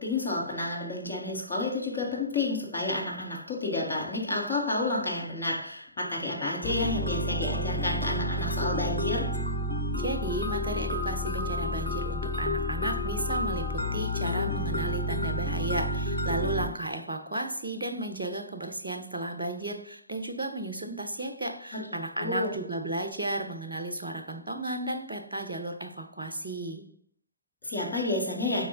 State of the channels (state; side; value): inverted; both; correlation -0.31